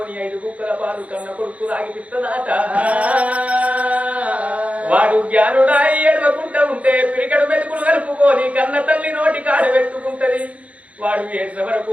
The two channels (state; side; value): late; left; 0.065 ms